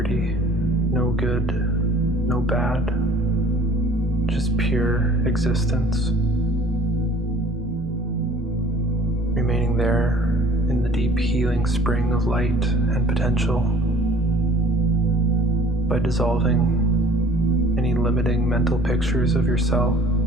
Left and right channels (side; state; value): both; normal; correlation 0.50